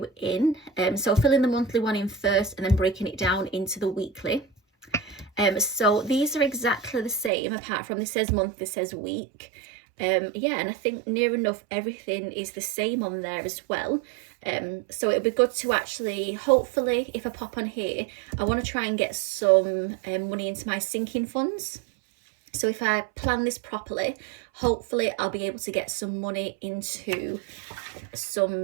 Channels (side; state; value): left; drops out; at 7.3 s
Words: in. So filling the monthly one in first and then breaking it down into the weekly. So these are exactly the same, apart from this says month, this says week. Yeah, and I think near enough everything is the same on there as well. So it'll be good to actually, hopefully, if I pop on here, I want to try and get some money into my sinking funds. So if I plan this properly, hopefully I'll be able to get some money into